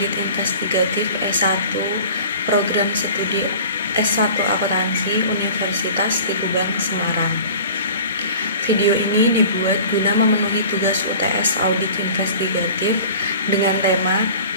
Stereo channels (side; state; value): both; inverted; correlation -0.43